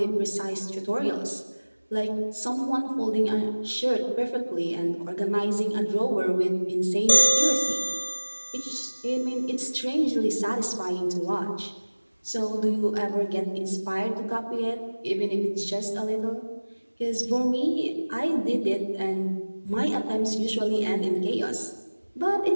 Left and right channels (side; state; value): both; inverted; correlation -1.00